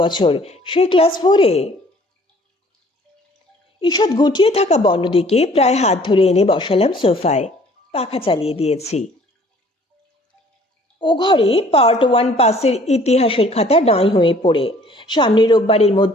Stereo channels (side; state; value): both; normal; correlation 0.55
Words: বছর, সেই ক্লাস 4-এ। ঈষৎ গুটিয়ে থাকা বনদিকে প্রায় হাত ধরে এনে বসালাম সোফায়। পাখা চালিয়ে দিয়েছি। ও ঘরে পার্ট 1 পাসের ইতিহাসের খাতা নাই হয়ে পড়ে। সামনের রোববারের